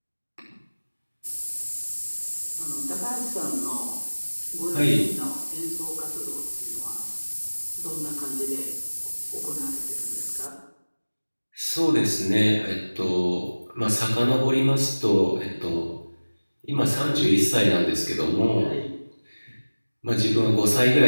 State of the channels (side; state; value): both; inverted; correlation -1.00